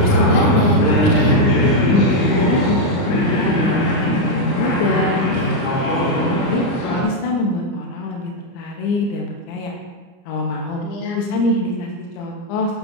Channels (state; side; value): late; right; 30 ms